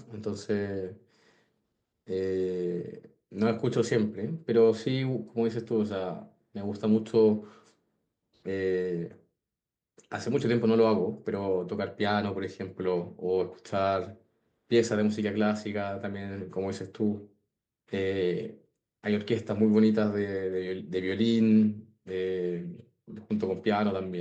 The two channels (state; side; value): identical; both; correlation 1.00